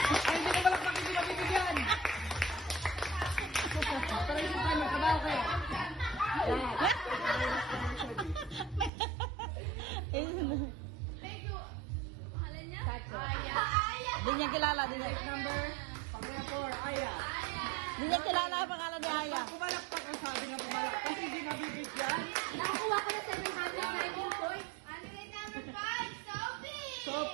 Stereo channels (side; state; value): left; drops out; at 8.9 s